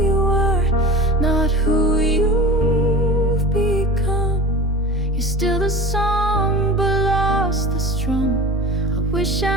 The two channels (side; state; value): both; normal; correlation 0.35